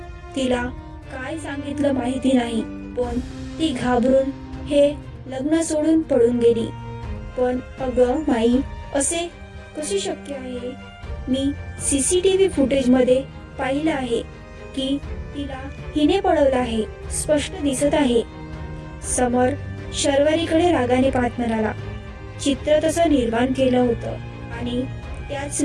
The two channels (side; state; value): both; identical; correlation 1.00